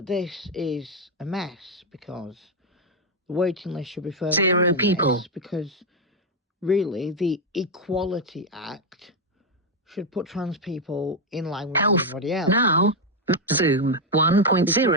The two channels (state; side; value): normal; both; correlation 0.04